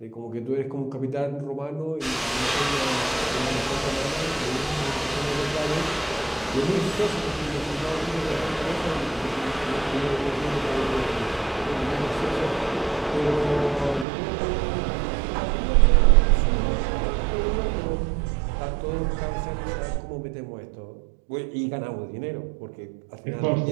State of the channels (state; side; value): drops out; left; at 14.1 s